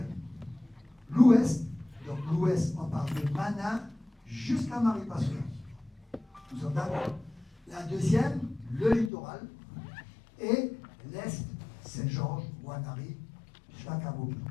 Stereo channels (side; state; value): right; drops out; at 9.1 s